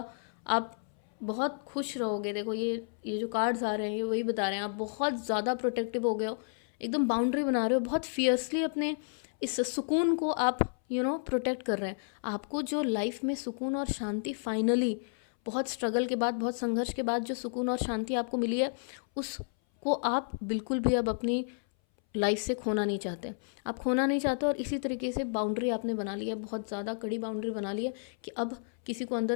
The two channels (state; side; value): silent; right; 57 dB below the other